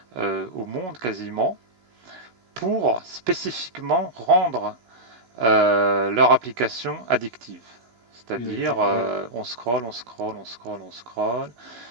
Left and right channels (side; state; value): left; late; 16 ms